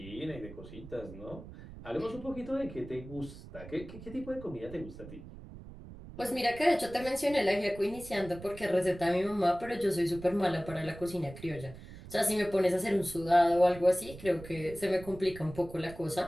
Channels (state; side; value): noise; right; rumble, 15 dB below the sound